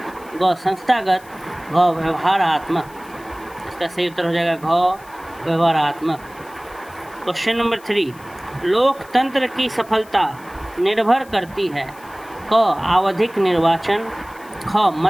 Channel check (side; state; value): left; noise; hiss, 24 dB below the sound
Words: ग संस्थागत, घ व्यवहारात्मक। इसका सही उत्तर हो जाएगा घ व्यवहारात्मक। क्वेश्चन नंबर 3, लोकतंत्र की सफलता निर्भर करती है। क आवधिक निर्वाचन, ख